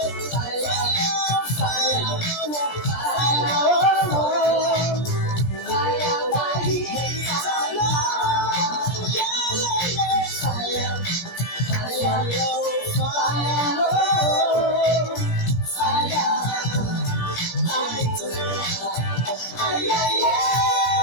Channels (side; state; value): right; late; 17 ms